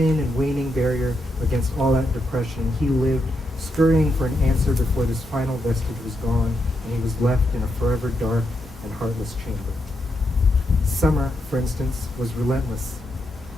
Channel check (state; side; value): normal; both; correlation 0.82